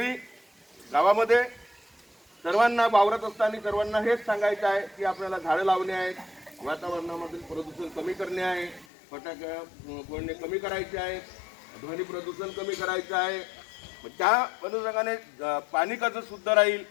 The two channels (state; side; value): drops out; right; at 8.8 s